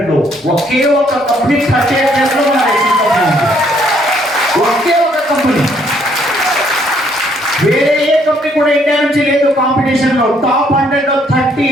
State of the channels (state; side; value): normal; both; correlation 0.67